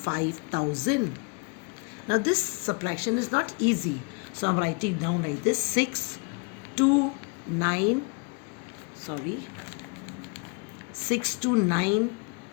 Now this subtraction is not easy, so I'm writing down like this:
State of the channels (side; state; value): right; quieter; 33.2 dB